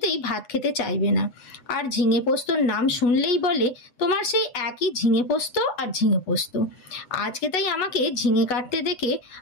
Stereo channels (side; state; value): right; late; 8.1 ms